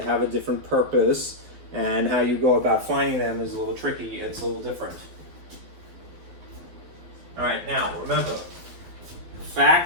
have a different purpose, and how you go about finding them is a little tricky. It's a little different. All right, now remember,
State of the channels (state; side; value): late; left; 12 ms